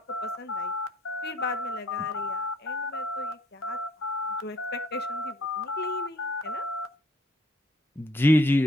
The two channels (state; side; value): normal; both; correlation 0.63